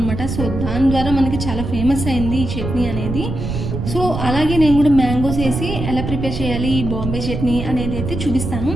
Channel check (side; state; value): right; noise; rumble, 4 dB below the sound